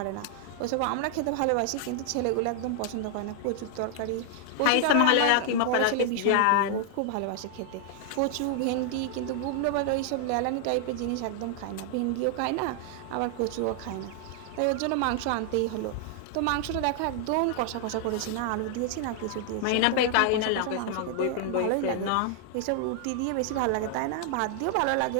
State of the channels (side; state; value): both; different; correlation 0.00